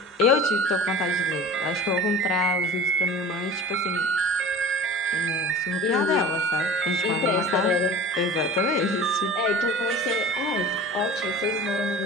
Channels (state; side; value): normal; both; correlation 0.39